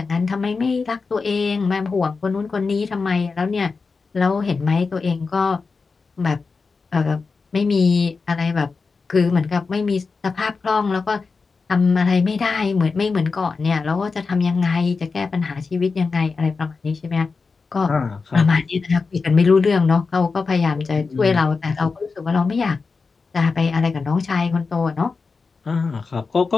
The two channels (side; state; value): right; quieter; 4.5 dB